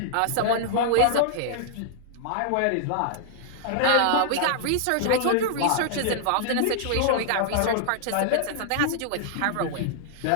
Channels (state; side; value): different; both; correlation -0.01